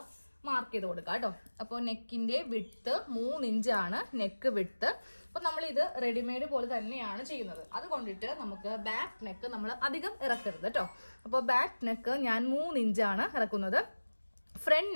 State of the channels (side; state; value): both; inverted; correlation -1.00